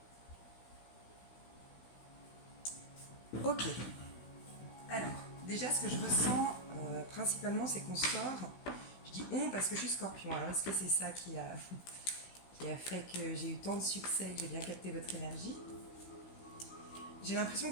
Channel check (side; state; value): right; late; 16 ms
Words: Ok. Alors, déjà, ce que je ressens principalement, c'est qu'on sort. Je dis on parce que je suis scorpion. Alors, est-ce que c'est ça qui a fait que j'ai eu tant de succès, que j'ai bien capté votre énergie? J'ai l'impression